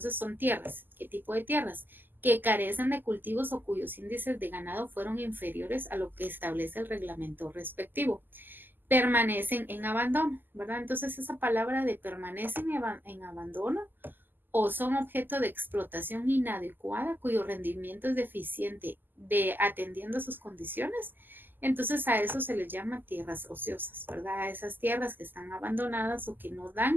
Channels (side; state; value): left; late; 0.091 ms